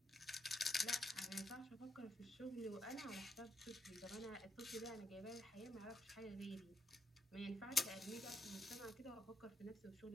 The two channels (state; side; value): normal; both; correlation 0.79